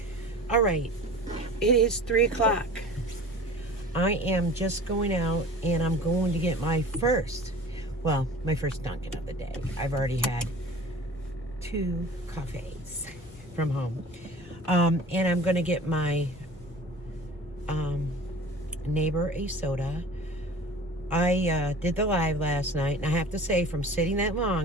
All right, it is 3 o'clock. I am just going out and I'm going to get my first Dunkin' of the day. I've already had 2 coffees from home. And I'm going to get my neighbor a soda. I did the live last night, and I have to say, from sitting that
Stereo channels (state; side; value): normal; both; correlation 0.42